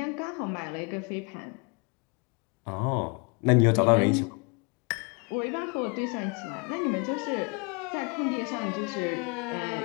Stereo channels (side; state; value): right; quieter; 32.8 dB